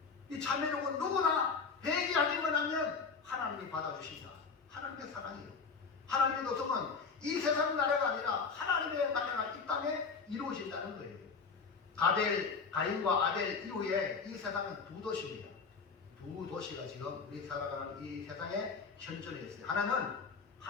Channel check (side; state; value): right; quieter; 5.1 dB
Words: 이 참회록은 누구나 회개하기만 하면 하나님이 받아주신다. 하나님의 사랑이에요. 하나님의 도성은 이 세상 나라가 아니라 하나님의 나라가 이 땅에 이루어진다는 거예요. 가인과 아벨 이후에 이 세상은 두 도시입니다. 두 도시가 지금 우리 살아가는 이 세상에 현존해 있어요. 하나는